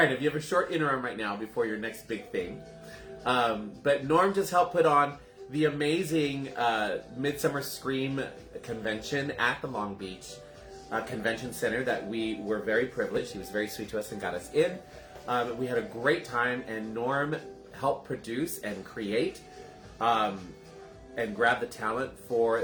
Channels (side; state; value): both; identical; correlation 1.00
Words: have a short interim right now before your next big thing. But Norm just helped put on the amazing Midsummer Scream convention at the Long Beach Convention Center that we were very privileged. He was very sweet to us and got us in. We had a great time, and Norm helped produce and create and grab the talent for